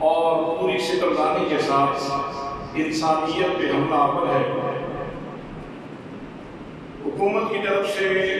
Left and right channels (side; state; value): both; identical; correlation 1.00